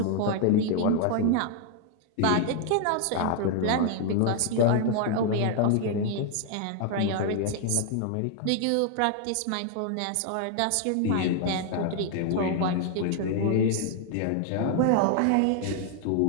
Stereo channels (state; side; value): different; both; correlation 0.00